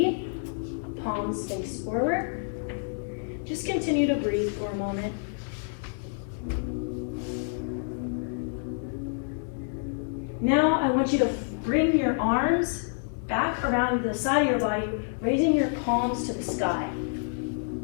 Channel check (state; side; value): silent; right; digital silence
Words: palms face forward. Just continue to breathe for a moment. Now I want you to bring your arms back around the side of your body, raising your palms to the sky.